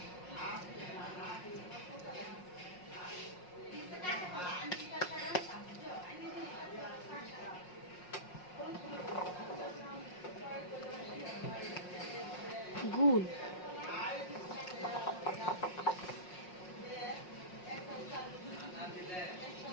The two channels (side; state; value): right; late; 5.5 ms